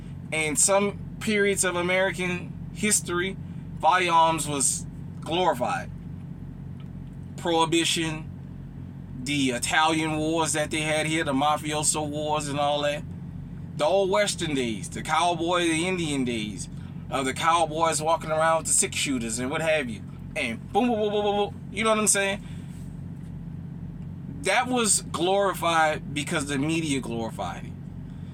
And some periods of American history, firearms was glorified. Prohibition, the Italian wars that they had here, the mafioso wars and all that. The old Western days, the cowboy, the Indian days, of the cowboys walking around with the 6-shooters and what have you. And boom, boom, boom, boom, boom, boom. You know what I'm saying? That was glorified because the media glorified it.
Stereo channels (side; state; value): both; identical; correlation 1.00